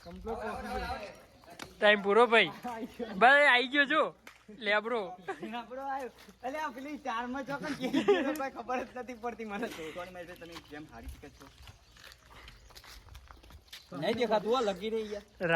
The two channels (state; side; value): identical; both; correlation 1.00